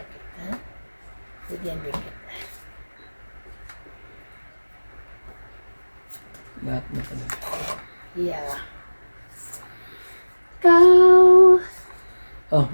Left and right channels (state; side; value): inverted; both; correlation -1.00